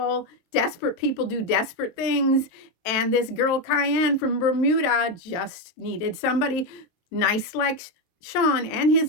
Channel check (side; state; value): right; late; 23 ms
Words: desperate people do desperate things. And this girl Cayenne from Bermuda just needed somebody nice like Sean and his